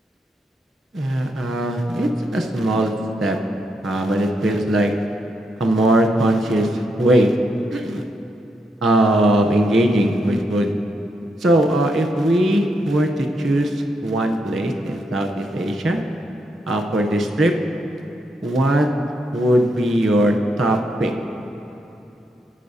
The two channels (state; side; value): normal; both; correlation 0.80